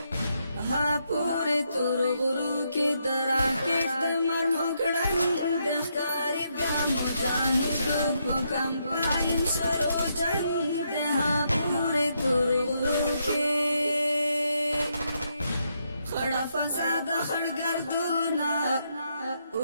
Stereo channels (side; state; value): both; inverted; correlation -0.78